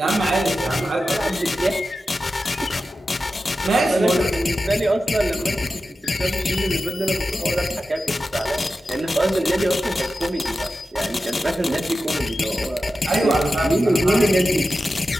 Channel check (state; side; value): normal; both; correlation 0.92